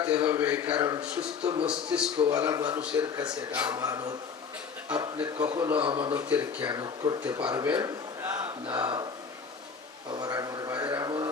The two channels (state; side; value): quieter; right; 6.0 dB